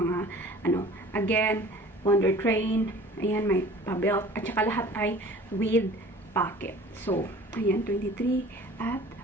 again, Wonder Train. Ayan, may pa-belt. At saka lahat ay with pocket. So, ayan, 23. At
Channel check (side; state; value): both; normal; correlation 0.46